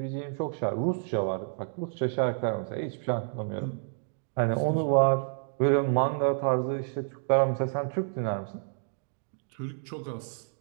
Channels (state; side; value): silent; left; digital silence